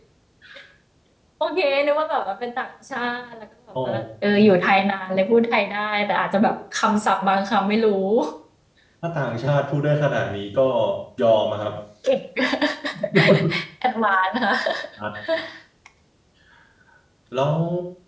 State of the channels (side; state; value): both; identical; correlation 1.00